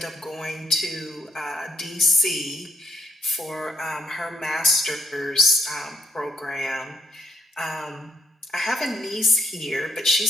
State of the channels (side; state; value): both; normal; correlation 0.73